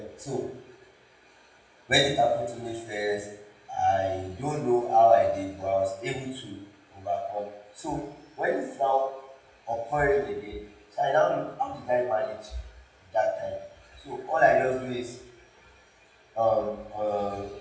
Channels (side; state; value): both; identical; correlation 1.00